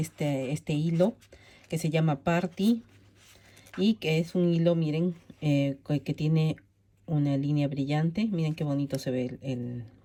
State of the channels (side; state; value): both; identical; correlation 1.00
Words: hilo que se llama Party y que es un hilo, miren, que tiene una línea brillante. Miren qué bonito se ve el